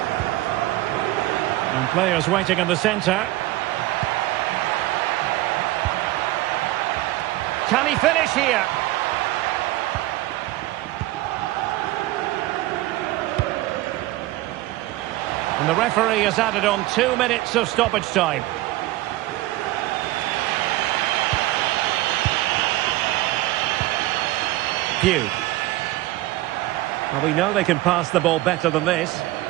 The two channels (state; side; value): quieter; left; 17.3 dB